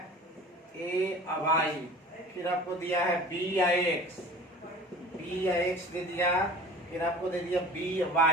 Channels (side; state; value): both; normal; correlation 0.42